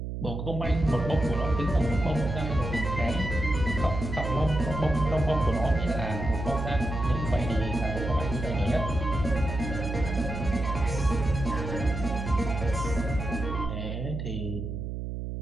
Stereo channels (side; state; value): right; noise; hum, 5 dB below the sound